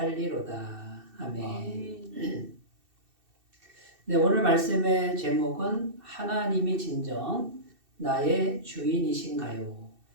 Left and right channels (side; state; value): left; late; 2.7 ms